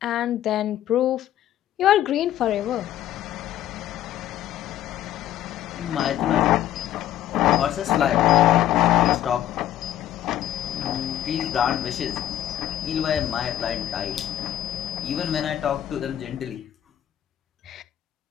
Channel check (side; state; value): right; quieter; 12.2 dB